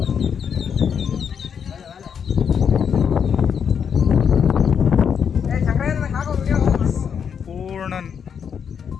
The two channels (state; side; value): quieter; right; 7.3 dB